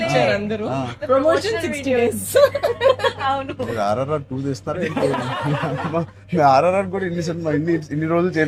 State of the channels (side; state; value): both; identical; correlation 1.00